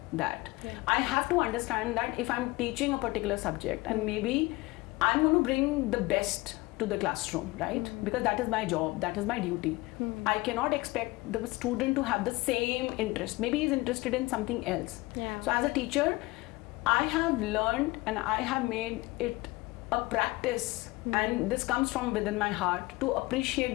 that. I have to understand that if I'm teaching a particular subject, and maybe I'm going to bring the best to the classroom, right? Because that is my job, that is my duty. I cannot expect the student to have the same interest. Maybe he's interested in something else. So as a teacher, I have learned and I have made it a practice, and this comes from within my heart, to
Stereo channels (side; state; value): right; quieter; 21.9 dB